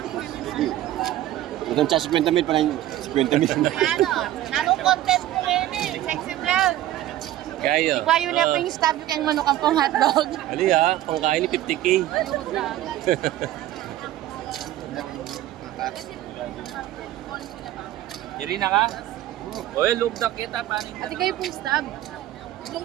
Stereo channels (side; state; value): left; quieter; 13.8 dB